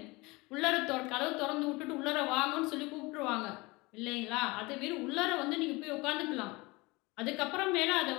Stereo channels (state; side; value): quieter; right; 23.8 dB